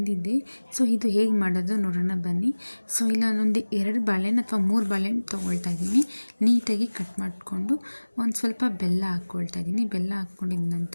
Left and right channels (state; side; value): inverted; both; correlation -1.00